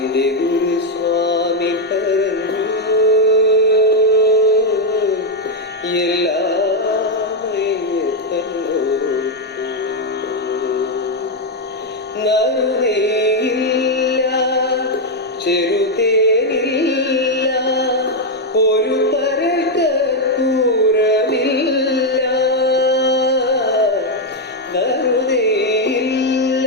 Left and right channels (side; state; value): both; normal; correlation 0.02